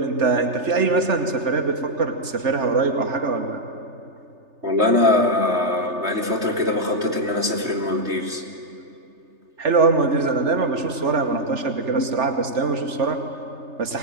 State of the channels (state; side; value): late; left; 3.3 ms